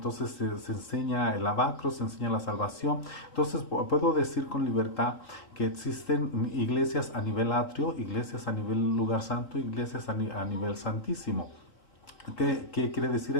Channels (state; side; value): late; right; 3.8 ms